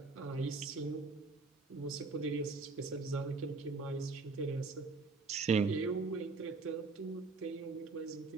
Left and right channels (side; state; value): left; quieter; 4.0 dB